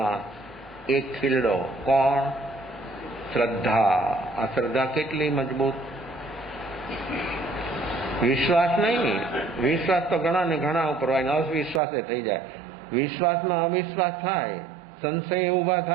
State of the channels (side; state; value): left; drops out; at 11.8 s